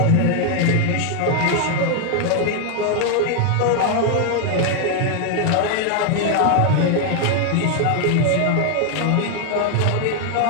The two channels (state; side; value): different; both; correlation 0.01